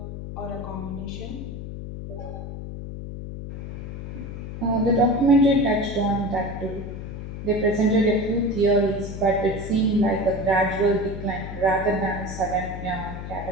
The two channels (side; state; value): left; noise; hum, 8 dB below the sound